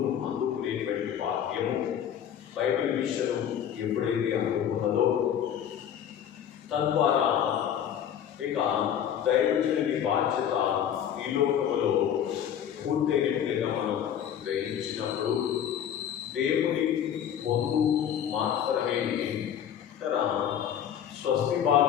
అందుకునేటువంటి వాక్యము బైబిల్ మిషన్ ఎప్పుడైతే అందుకున్నదో, తద్వారా ఇక దైవజనుని బాధ్యత ఈ లోకములో పూర్తయినట్లుగా మనం గ్రహించినప్పుడు దేవుని పొందు మాత్రమే స్వస్తి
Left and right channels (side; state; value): right; quieter; 9.4 dB